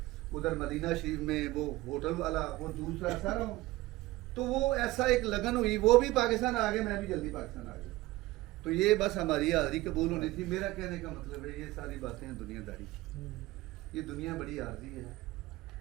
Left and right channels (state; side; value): quieter; left; 18.4 dB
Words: ادھر مدینہ شریف میں وہ ہوٹل والا, وہ دوسرا سارا. تو وہ ایسا ایک لگن ہوئی, وہ بھی پاکستان آ گئے, میں بھی جلدی پاکستان آ گیا. تو یہ بس ہماری حاضری قبول ہونی تھی. میرا کہنے کا مطلب ہے یہ ساری باتیں ہیں دنیا داری. یہ دنیا بڑی عارضی ہے.